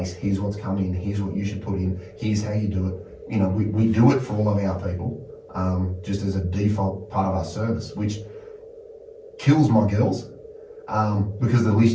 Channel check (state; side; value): identical; both; correlation 1.00